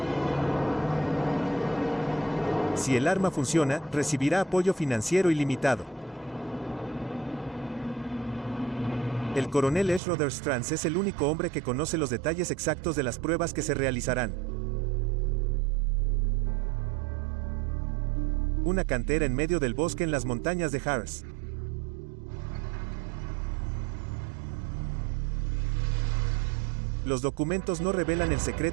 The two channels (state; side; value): drops out; left; at 10.0 s